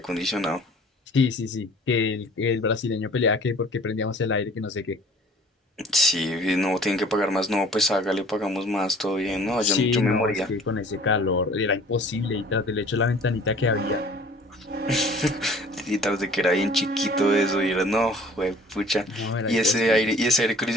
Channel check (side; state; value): both; normal; correlation 0.51